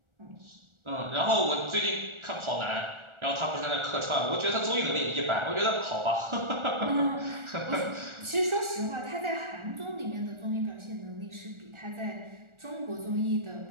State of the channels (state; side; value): late; left; 1.4 ms